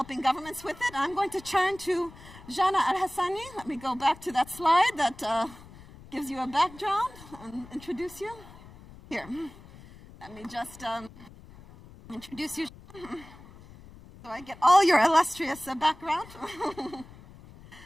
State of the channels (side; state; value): left; noise; rumble, 20 dB below the sound